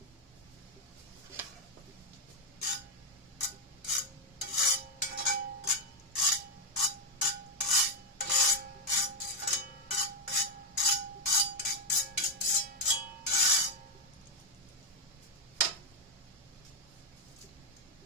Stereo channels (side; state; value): both; normal; correlation 0.01